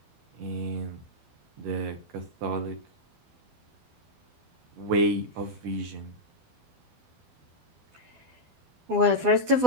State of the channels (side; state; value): left; late; 12 ms